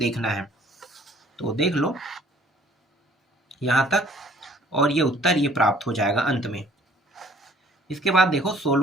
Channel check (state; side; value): normal; both; correlation 0.57